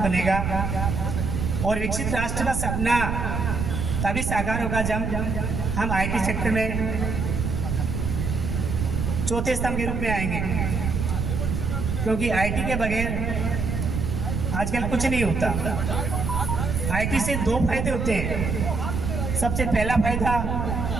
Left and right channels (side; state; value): right; noise; rumble, 1 dB below the sound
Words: और विकसित राष्ट्र का सपना तभी साकार होगा जब हम IT सेक्टर में चौथे स्तंभ के रूप में आएंगे, क्योंकि IT के बगैर आजकल कुछ नहीं होता। IT से 2 फायदे होते हैं। सबसे पहला फायदा